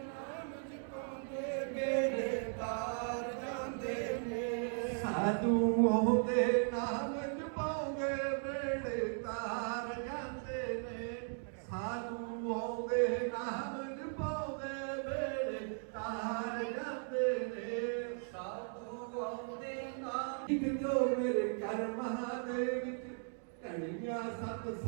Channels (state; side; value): silent; left; 53 dB below the other